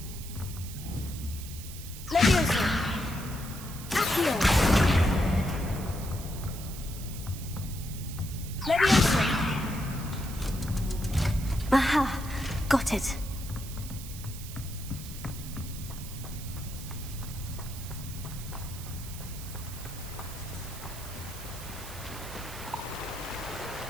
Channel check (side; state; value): right; noise; hiss, 13 dB below the sound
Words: Levioso. Accio. Levioso. Aha! Got it.